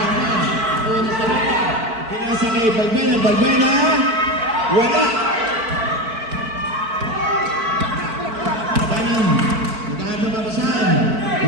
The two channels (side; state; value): left; late; 4.5 ms